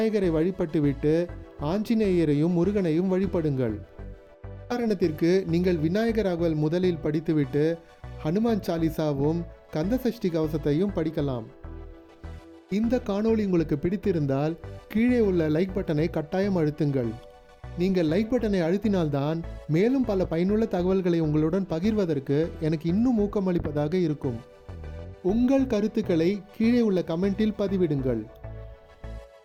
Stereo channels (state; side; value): identical; both; correlation 1.00